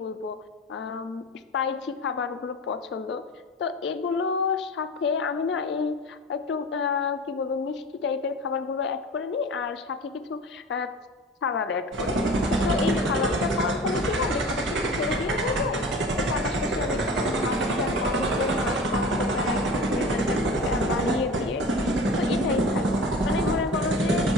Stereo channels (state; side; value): normal; both; correlation 0.37